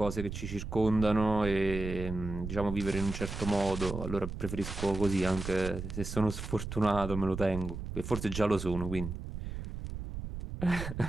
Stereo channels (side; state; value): right; noise; rumble, 7 dB below the sound